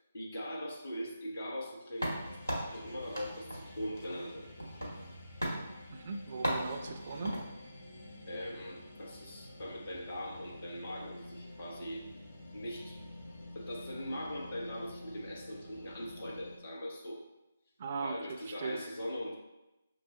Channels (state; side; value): inverted; both; correlation -0.87